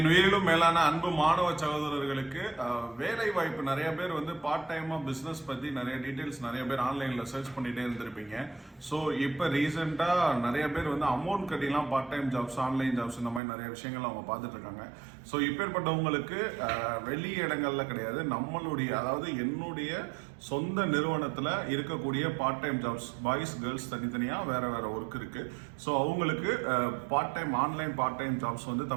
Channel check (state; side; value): drops out; left; at 13.4 s